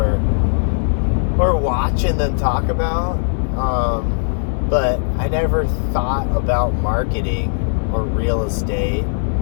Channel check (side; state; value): right; silent; digital silence